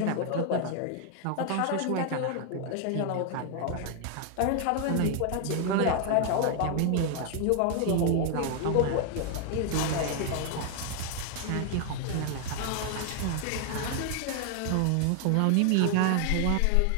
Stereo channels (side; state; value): both; different; correlation 0.00